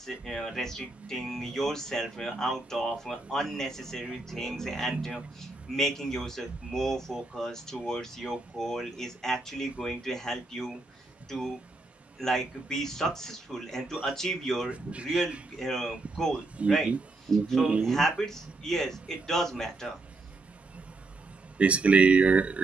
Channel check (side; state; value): left; quieter; 3.2 dB